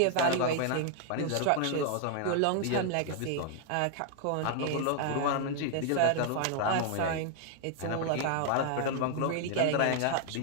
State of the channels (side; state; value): both; different; correlation 0.00